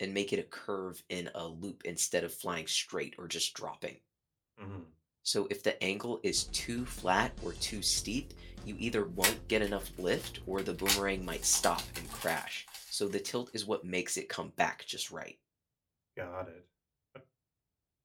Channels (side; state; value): both; identical; correlation 1.00